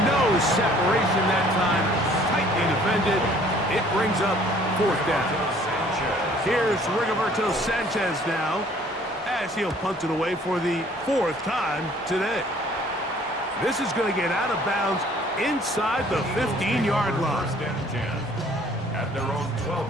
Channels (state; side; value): normal; both; correlation 0.56